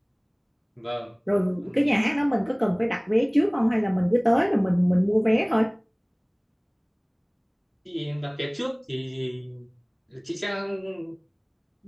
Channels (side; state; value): both; identical; correlation 1.00